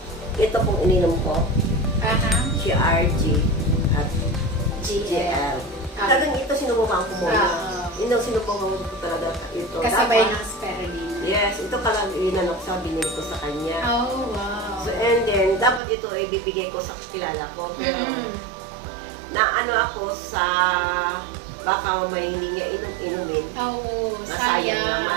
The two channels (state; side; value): drops out; left; at 15.8 s